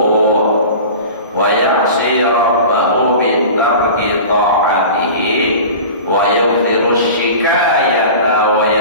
wa ya'si rabbahu bi tarki ta'atihi wa yudhiru syikayata wa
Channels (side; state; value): both; inverted; correlation -0.36